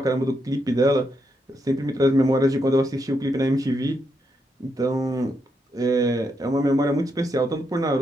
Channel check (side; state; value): both; normal; correlation 0.81